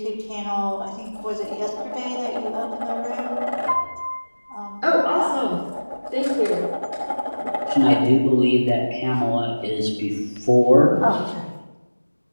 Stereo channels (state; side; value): inverted; both; correlation -1.00